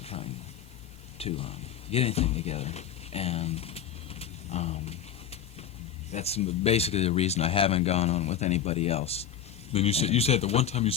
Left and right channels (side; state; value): right; quieter; 8.9 dB